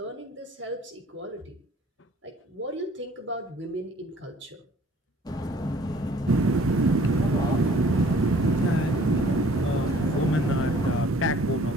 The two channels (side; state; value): both; normal; correlation 0.55